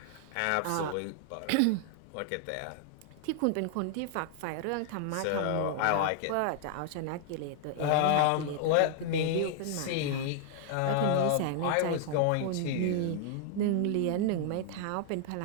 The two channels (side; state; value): both; different; correlation -0.01